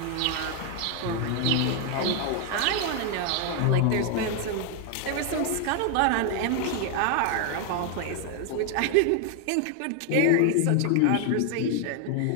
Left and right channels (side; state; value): both; different; correlation 0.00